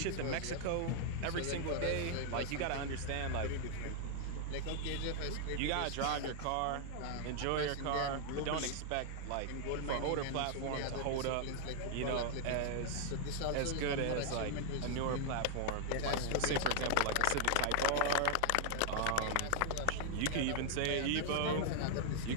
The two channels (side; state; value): both; different; correlation 0.00